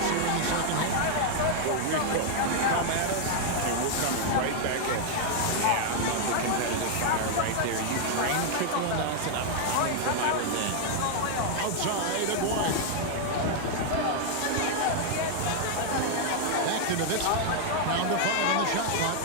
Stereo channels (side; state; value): both; different; correlation 0.00